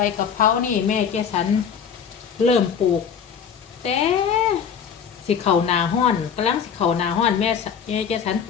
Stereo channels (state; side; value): quieter; right; 7.3 dB